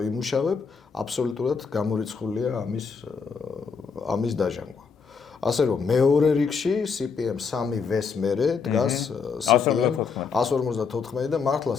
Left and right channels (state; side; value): quieter; right; 5.6 dB